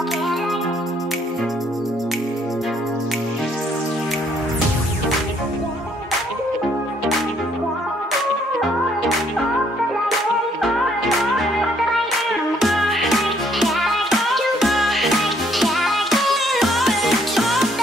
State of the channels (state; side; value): normal; both; correlation 0.67